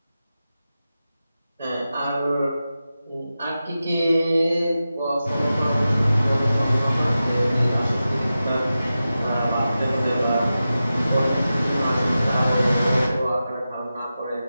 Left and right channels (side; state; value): both; inverted; correlation -0.93